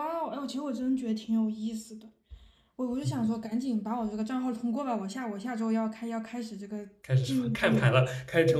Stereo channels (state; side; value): identical; both; correlation 1.00